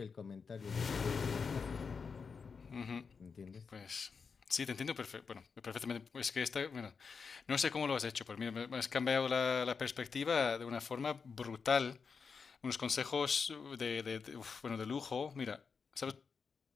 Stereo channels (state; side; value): quieter; right; 5.5 dB